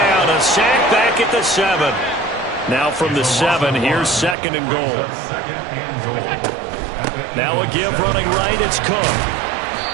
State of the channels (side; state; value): left; drops out; at 4.4 s